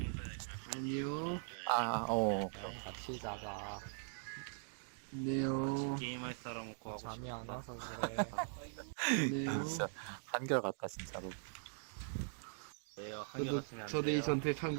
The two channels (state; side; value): silent; left; digital silence